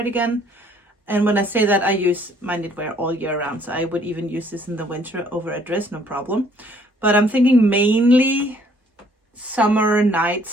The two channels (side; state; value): both; normal; correlation 0.61